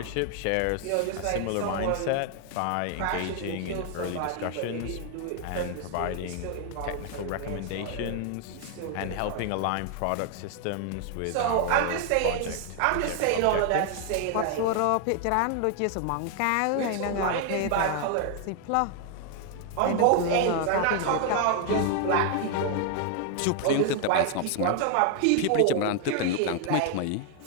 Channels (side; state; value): both; different; correlation 0.00